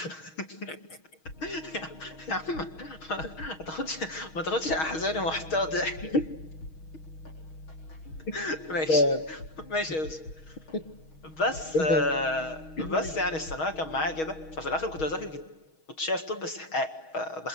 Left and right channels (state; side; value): late; right; 6.3 ms